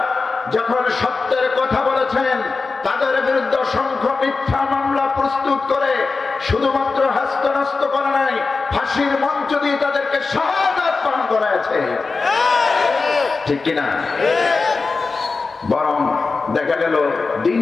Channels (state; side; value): quieter; right; 4.2 dB